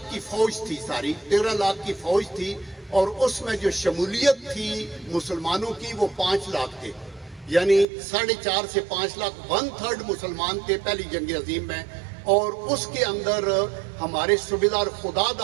کی فوج تھی، ساری 13 لاکھ کی فوج تھی، اور اس میں جو شمولیت تھی مسلمانوں کی وہ 5 لاکھ تھے، یعنی 4.5 سے 5 لاکھ، 1/3 مسلمان تھے پہلی جنگ عظیم میں. اور اس کے اندر ہمارے صوبیدار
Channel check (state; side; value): drops out; left; at 7.9 s